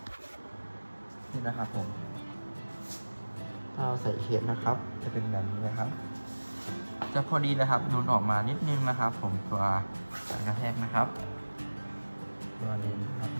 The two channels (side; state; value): both; inverted; correlation -1.00